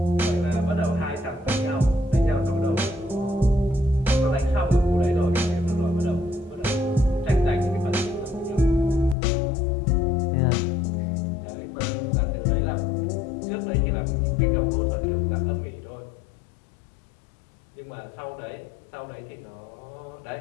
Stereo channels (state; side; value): drops out; right; at 9.2 s